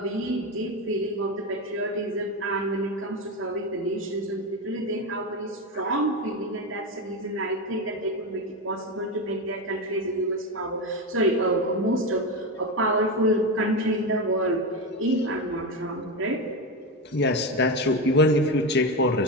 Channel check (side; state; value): both; normal; correlation 0.15